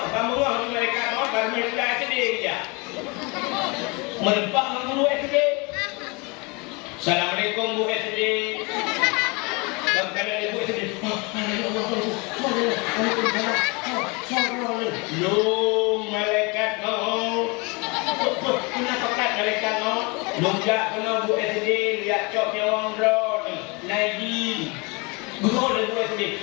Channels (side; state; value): right; quieter; 29.0 dB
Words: di malaikat maut baru mereka sedih dia. Menempak mengguru sedih. Assalamualaikum Bu SD. Kalau ibu SD, Long malaikat mau. Kenapa kat malaikat mau? Longjak kena Bu SD lihat coknya orang drone. Naik. Gua dah Bu